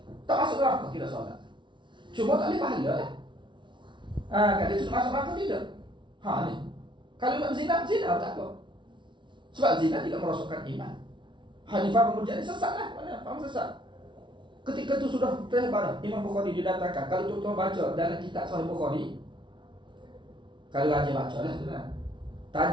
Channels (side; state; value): left; late; 0.24 ms